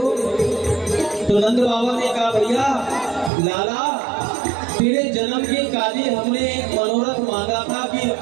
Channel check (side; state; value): left; drops out; at 3.3 s